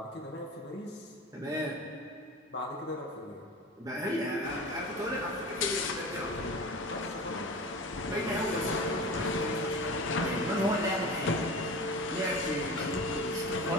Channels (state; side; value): normal; both; correlation 0.34